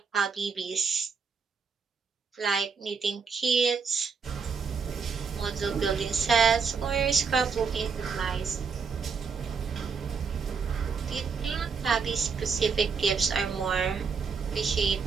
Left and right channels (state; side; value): quieter; left; 5.6 dB